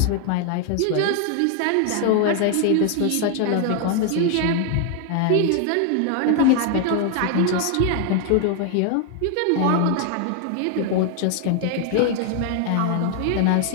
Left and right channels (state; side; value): different; both; correlation 0.00